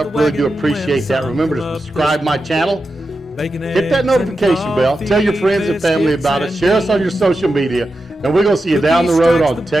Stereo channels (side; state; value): both; normal; correlation 0.90